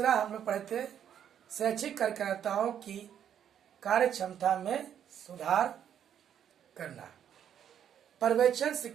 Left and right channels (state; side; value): quieter; left; 9.3 dB